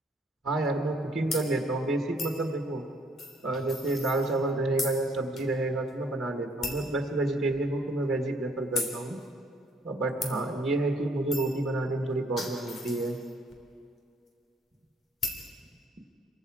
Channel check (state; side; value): normal; both; correlation 0.64